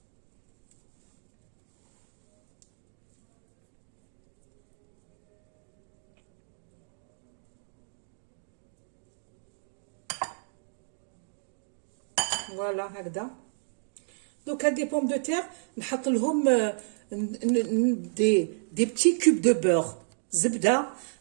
فوالا هكذا. دوك هاد لي بوم دو تير نحط لهم دي بتي كوب دو بور زبده،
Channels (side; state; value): left; silent; digital silence